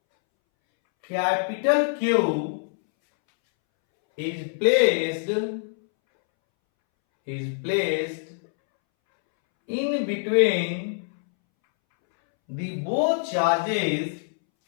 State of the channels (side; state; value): right; silent; 62 dB below the other